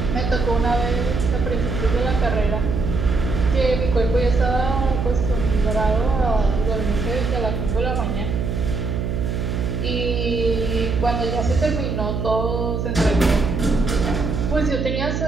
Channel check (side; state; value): right; noise; hum, 2 dB below the sound